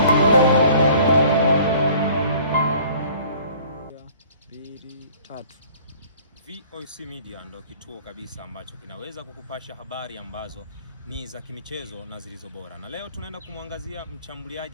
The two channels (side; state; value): both; inverted; correlation -0.51